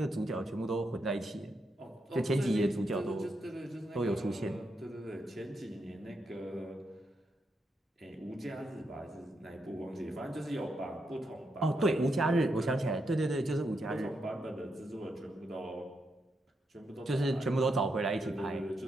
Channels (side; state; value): both; normal; correlation 0.82